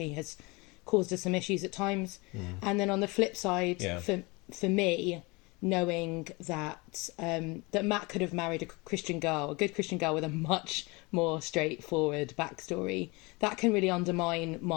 has caused us some issues at times. And then on the flip side, for me, knowing that that Matt could have married a good Christian girl with a much more straightforward backstory, that can really undermine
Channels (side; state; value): right; quieter; 26.1 dB